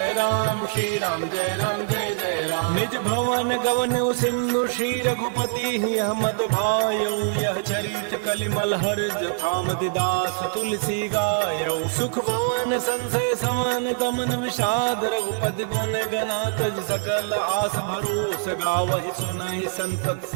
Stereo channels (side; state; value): left; silent; 63 dB below the other